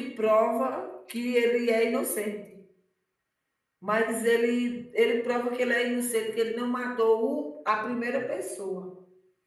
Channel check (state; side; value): identical; both; correlation 1.00